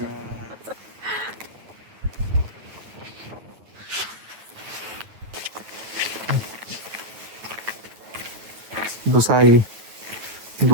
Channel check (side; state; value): left; late; 9.3 ms